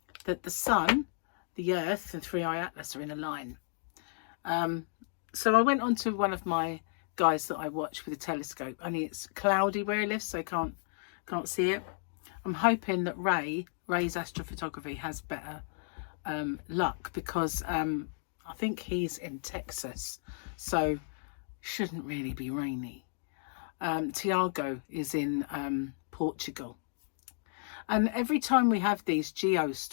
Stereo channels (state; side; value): silent; right; digital silence